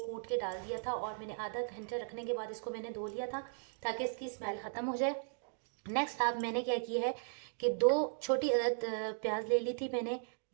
कूट के डाल दिया था और मैंने आधा घंटे रखने के बाद इसको मैंने धो लिया था ताकि इसकी स्मेल ख़त्म हो जाए। नेक्स्ट आप मैंने क्या किया है कि 2 छोटी अदद प्याज ले ली थी मैंने,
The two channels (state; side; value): silent; left; digital silence